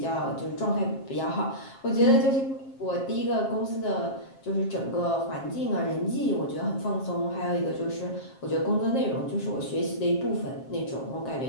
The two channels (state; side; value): late; right; 7.5 ms